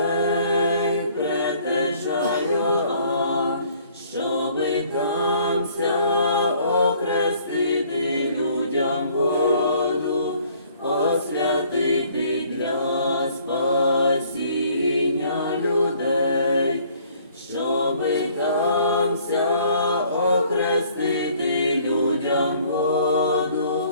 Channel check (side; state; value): both; inverted; correlation -0.59